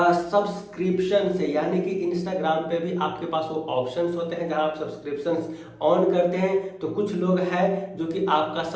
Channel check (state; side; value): identical; both; correlation 1.00